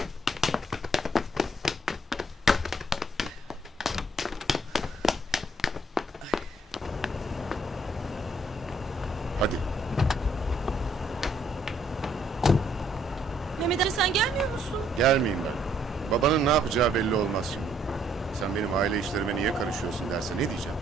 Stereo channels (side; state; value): both; normal; correlation 0.67